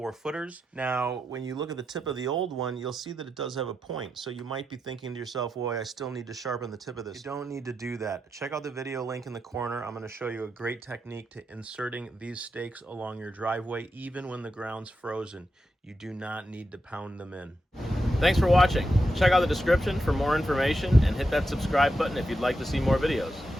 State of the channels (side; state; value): both; normal; correlation 0.87